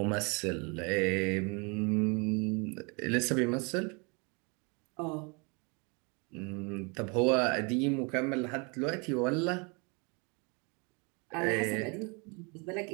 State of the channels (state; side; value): quieter; left; 32.0 dB